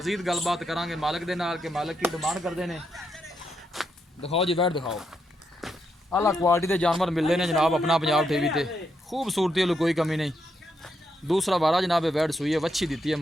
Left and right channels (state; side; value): normal; both; correlation 0.80